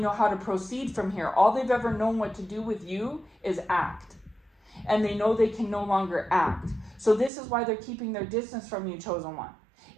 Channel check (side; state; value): left; drops out; at 7.3 s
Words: how to proceed from here. All they've ever known what to do with you is act. And they know they can no longer act. So this is why they're keeping their distance from you, chosen one.